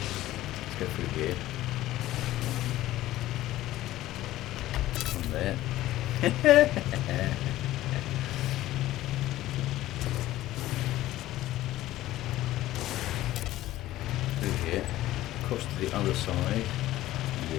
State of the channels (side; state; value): right; quieter; 15.3 dB